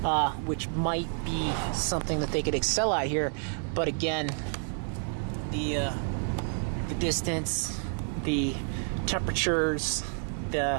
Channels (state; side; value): silent; left; 58 dB below the other